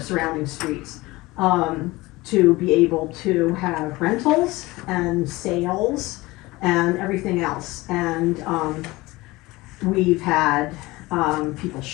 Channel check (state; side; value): quieter; right; 20.8 dB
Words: surrounding streets, to be able to have rentals and sales and everything else. And we've had people